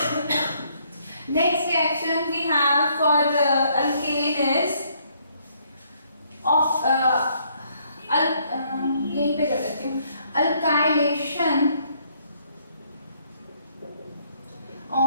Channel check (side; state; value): both; inverted; correlation -0.68